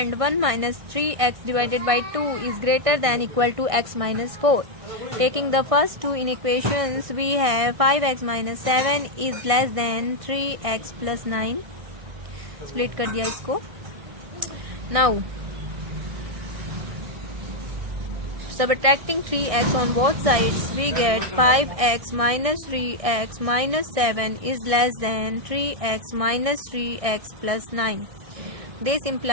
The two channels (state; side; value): late; left; 1.6 ms